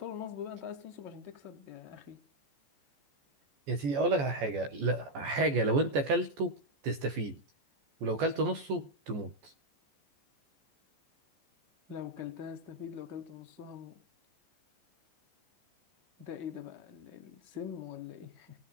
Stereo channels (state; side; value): late; left; 14 ms